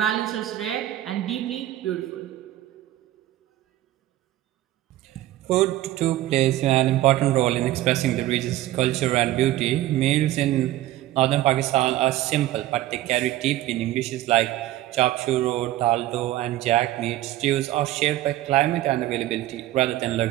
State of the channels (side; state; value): left; quieter; 14.9 dB